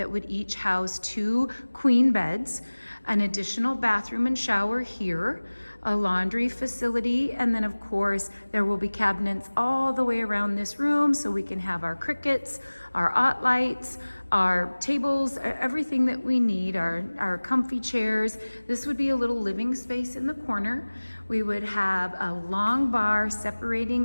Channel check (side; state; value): both; inverted; correlation -1.00